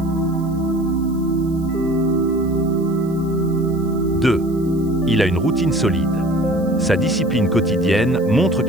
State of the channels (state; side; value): noise; right; hiss, 26 dB below the sound